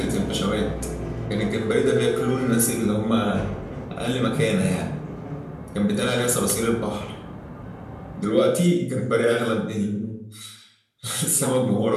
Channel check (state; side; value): identical; both; correlation 1.00